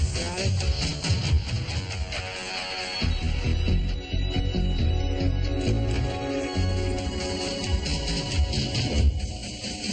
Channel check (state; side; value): identical; both; correlation 1.00